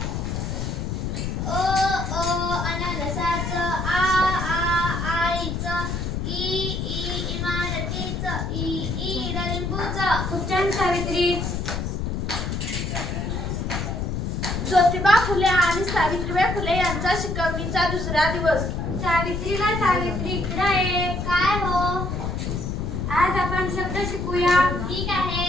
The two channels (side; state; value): left; noise; rumble, 2 dB below the sound